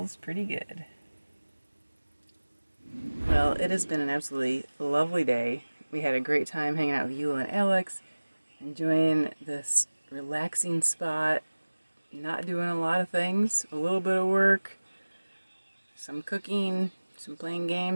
pretty good. Well, it has been an absolutely lovely day. We had a great time hanging out with Eula and Alex, enjoying this relaxing spot, not doing a lot of things, a little bit of work, some cooking, some playing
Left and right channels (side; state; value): both; inverted; correlation -1.00